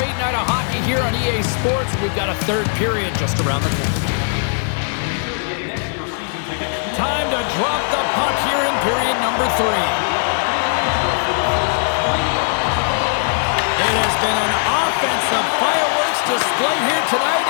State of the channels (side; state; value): right; silent; digital silence